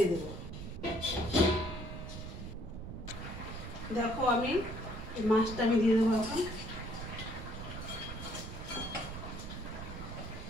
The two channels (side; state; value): right; noise; rumble, 9 dB below the sound